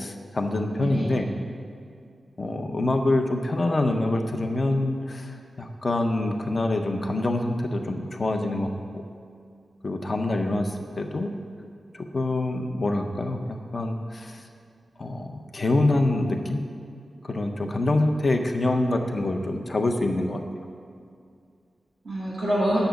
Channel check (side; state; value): both; normal; correlation 0.93